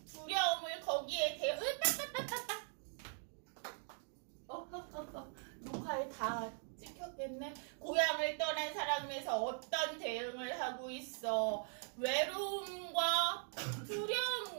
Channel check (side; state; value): left; silent; 50 dB below the other